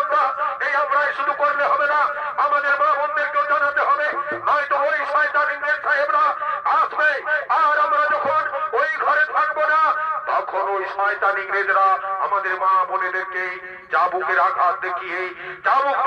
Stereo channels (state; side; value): identical; both; correlation 1.00